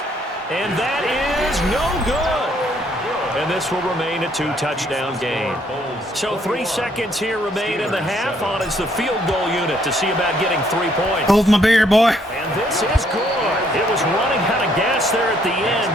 And that is no good. And this will remain a 2-touchdown game. So 3 seconds here remain in the half on as the field goal unit to see about getting 3 points. Hold my beer, boy. And this is good. It was running out of gas there at the end,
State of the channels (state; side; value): normal; both; correlation 0.68